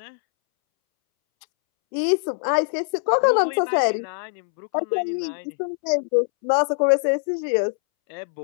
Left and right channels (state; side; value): silent; right; 64 dB below the other